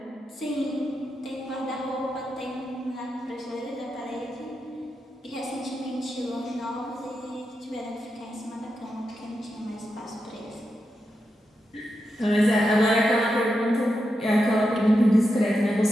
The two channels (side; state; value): both; normal; correlation 0.87